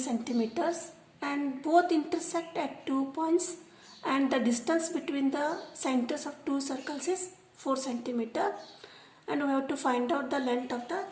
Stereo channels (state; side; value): identical; both; correlation 1.00